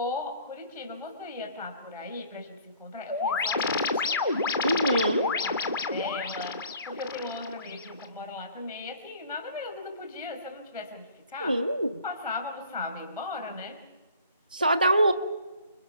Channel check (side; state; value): both; inverted; correlation -0.52